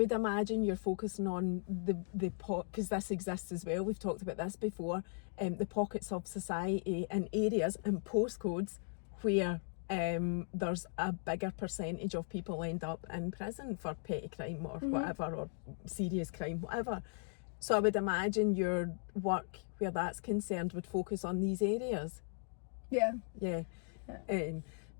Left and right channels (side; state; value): right; silent; 53 dB below the other